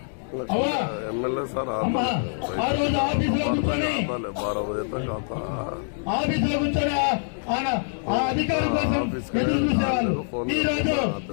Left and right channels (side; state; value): right; silent; digital silence